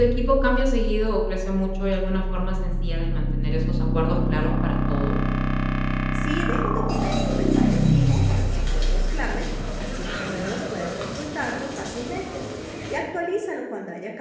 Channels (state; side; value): identical; both; correlation 1.00